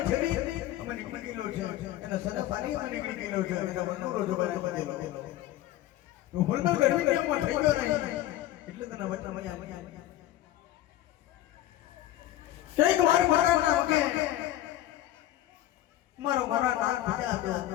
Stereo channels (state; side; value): quieter; right; 14.0 dB